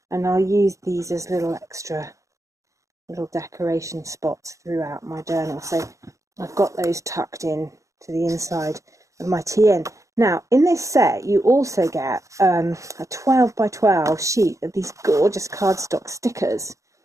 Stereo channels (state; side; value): late; left; 0.15 ms